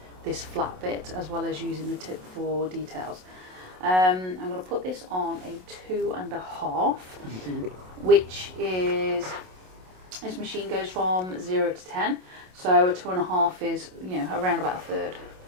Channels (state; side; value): late; left; 27 ms